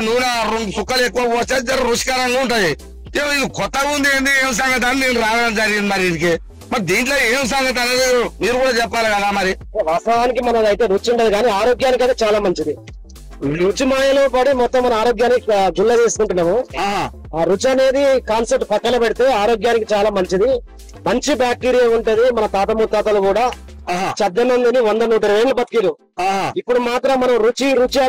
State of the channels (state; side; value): identical; both; correlation 1.00